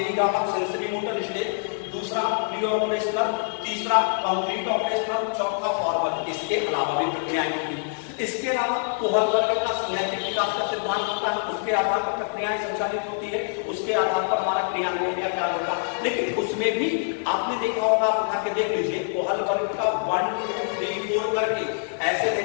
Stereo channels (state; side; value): silent; right; digital silence